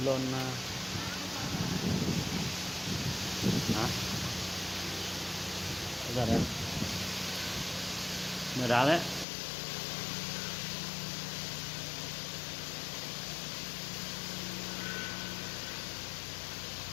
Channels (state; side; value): drops out; right; at 9.2 s